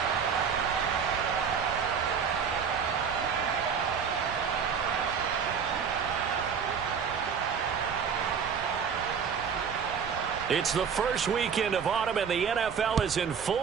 It's the first weekend of autumn, and the NFL is in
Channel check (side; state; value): left; quieter; 6.7 dB